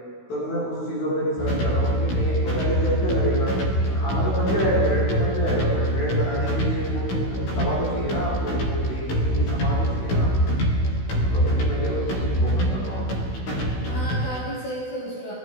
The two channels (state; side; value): late; right; 16 ms